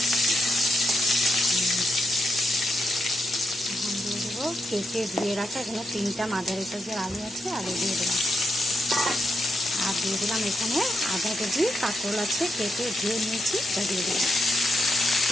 এখন দিয়ে দেবো কেটে ধুয়ে রাখা এখানে 3টা মাঝারি সাইজের আলু আছে, আলু দিয়ে দিলাম। আর দিয়ে দিলাম এখানে আধা কেজি কাঁকরোল আছে, কেটে ধুয়ে নিয়েছি, এটা দিয়ে দিলাম।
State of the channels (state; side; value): normal; both; correlation 0.83